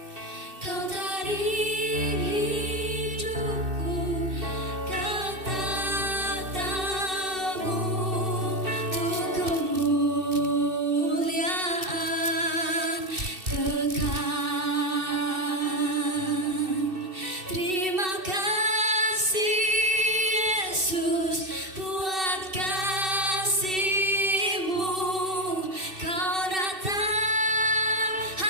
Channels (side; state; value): left; late; 2.6 ms